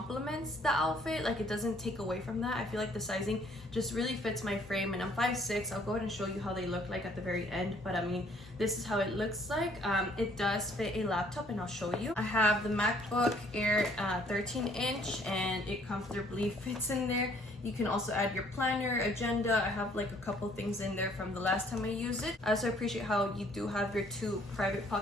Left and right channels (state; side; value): normal; both; correlation 0.61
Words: the outfit, like it doesn't take away from that. I feel like the sizing just really fits my frame, and I'm 5'6". I'll go ahead and show you how they look like at the very end, but I mean, this is how it looks like. It does fit a laptop, and I'll show you. I have the MacBook Air 13-inch, and it comfortably fits in there. You can also add your planner, agenda. I have like a couple things in there from the last time I used it. I also appreciate how you do have your 2 private